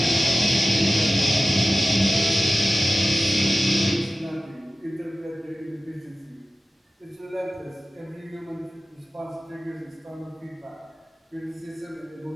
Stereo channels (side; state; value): both; normal; correlation 0.96